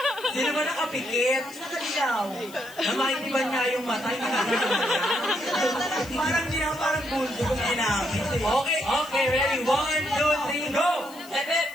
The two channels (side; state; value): left; noise; hiss, 20 dB below the sound